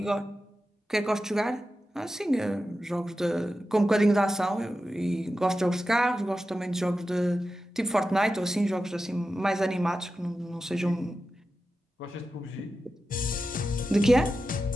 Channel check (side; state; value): both; normal; correlation 0.92